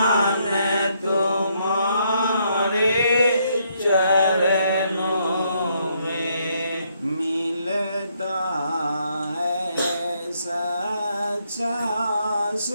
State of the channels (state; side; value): inverted; both; correlation -0.73